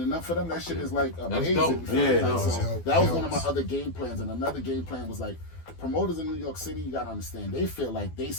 up for them, that shit is like amazing. So that was one of my other game plans, and another game plan was like, promoters in New York City, you gotta understand, they feel like they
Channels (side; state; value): right; late; 12 ms